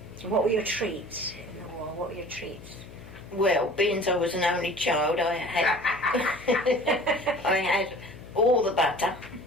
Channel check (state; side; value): noise; left; hum, 18 dB below the sound